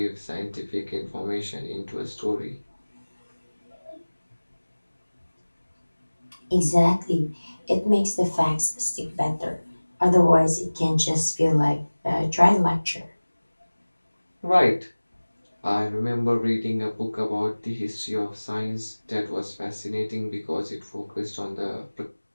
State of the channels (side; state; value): both; inverted; correlation -1.00